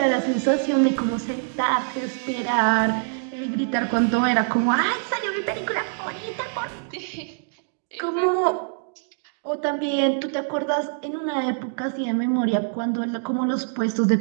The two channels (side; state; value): left; silent; digital silence